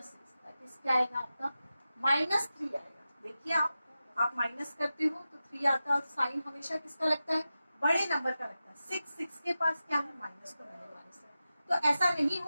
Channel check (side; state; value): both; inverted; correlation -0.93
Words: 6, दैट इज क्या आएगा आपका माइनस 3 आएगा। देखिए आप माइनस करते हो तो 3 आता है और साइन हमेशा किसका लगता है बड़े नंबर का लगता है। 6 के पास क्या है माइनस को मैंने माइनस है। तो ऐसा नहीं